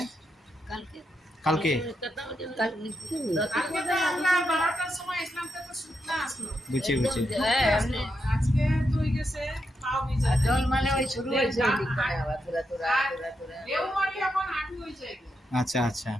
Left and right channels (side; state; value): both; normal; correlation 0.84